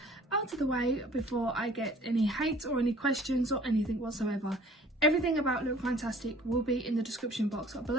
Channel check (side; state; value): both; normal; correlation 0.52